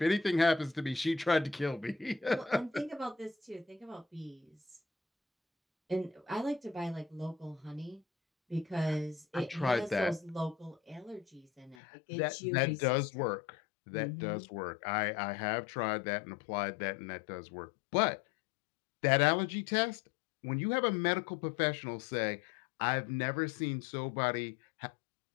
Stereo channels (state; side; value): drops out; right; at 11.8 s